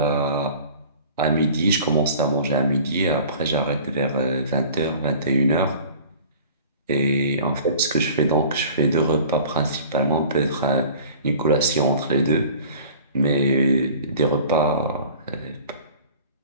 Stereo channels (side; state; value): both; inverted; correlation -0.44